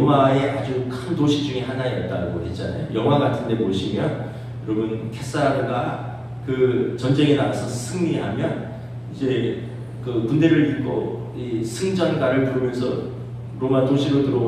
아주 큰 도시 중에 하나였다고 했잖아요. 영화 같은 데 보시면 여러분 케사르가 그 전쟁에 나가서 승리하면 이제 그 군대를 입고 이 승전가를 부르면서 로마 도시로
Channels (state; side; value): identical; both; correlation 1.00